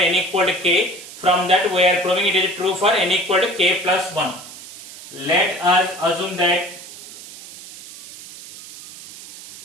equal to k. From that we are proving it is true for n equal to k plus 1. Let us assume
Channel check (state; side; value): noise; right; hiss, 15 dB below the sound